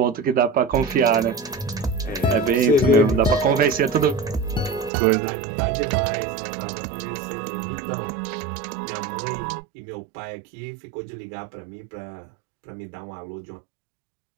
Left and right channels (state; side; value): drops out; left; at 4.9 s